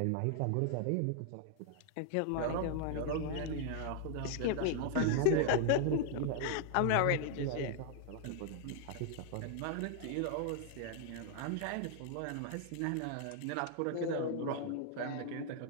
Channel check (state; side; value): different; both; correlation -0.01